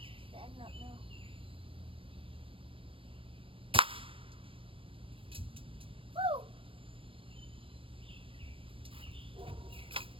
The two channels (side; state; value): left; late; 0.26 ms